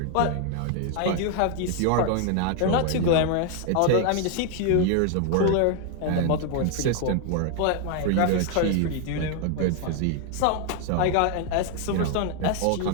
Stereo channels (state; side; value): different; both; correlation 0.00